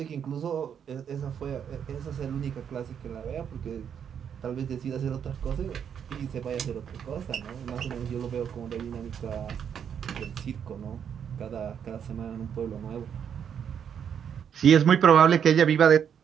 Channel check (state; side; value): quieter; left; 8.1 dB